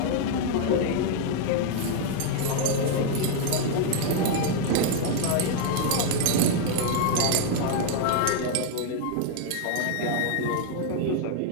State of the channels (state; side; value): different; both; correlation 0.00